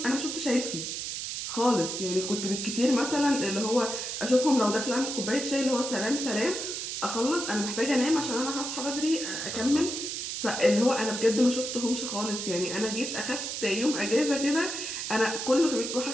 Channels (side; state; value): right; noise; hiss, 4 dB below the sound